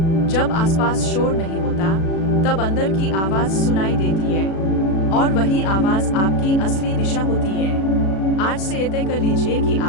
जब आसपास शोर नहीं होता, तब अंदर की आवाज सुनाई देती है, और वही आवाज आपकी असली दिशा होती है। आज से ये तय कर लीजिए कि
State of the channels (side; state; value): right; late; 36 ms